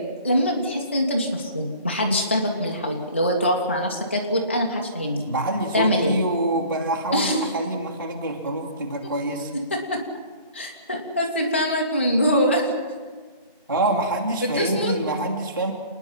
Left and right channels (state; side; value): inverted; both; correlation -0.46